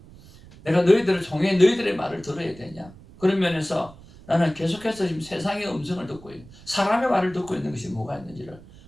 내가 너희들을 통해 너희들의 말을 들어야 되냐? 그런 면에서 나는 계속해서 지금 세상의 음성을 듣고 있는, 사람의 말을 듣고 있는 것이 뭐가 있는지를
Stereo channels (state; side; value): noise; right; rumble, 21 dB below the sound